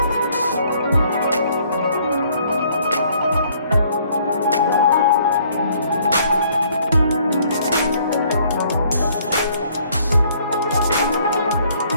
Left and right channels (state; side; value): inverted; both; correlation -0.63